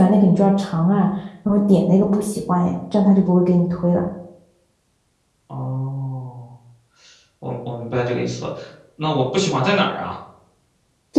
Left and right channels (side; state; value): both; identical; correlation 1.00